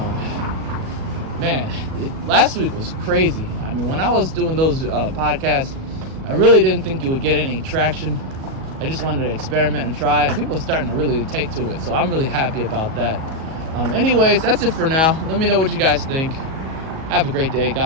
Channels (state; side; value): late; left; 37 ms